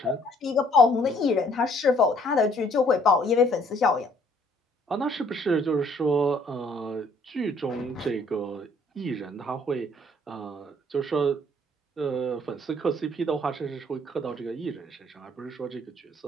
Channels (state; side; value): normal; both; correlation 0.62